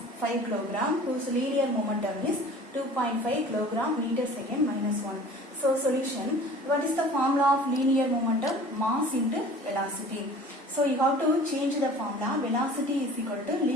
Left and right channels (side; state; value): both; normal; correlation 0.45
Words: 5 kg whose linear momentum is 2.5 kilogram meter second minus 1. So solution, what is the formula of linear momentum? Mass into velocity. So you have to change the formula. Velocity is equal to